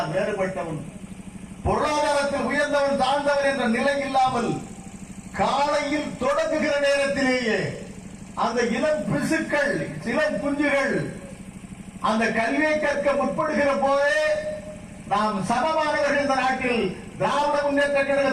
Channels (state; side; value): identical; both; correlation 1.00